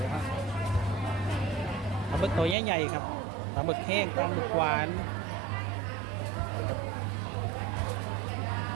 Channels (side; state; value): left; drops out; at 2.6 s